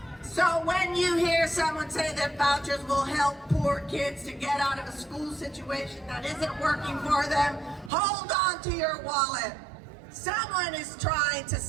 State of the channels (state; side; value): drops out; left; at 7.9 s